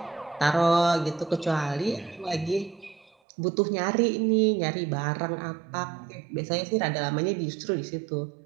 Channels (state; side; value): drops out; left; at 3.1 s